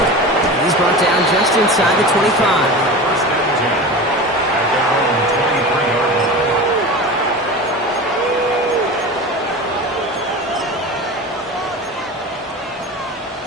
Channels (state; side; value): normal; both; correlation 0.31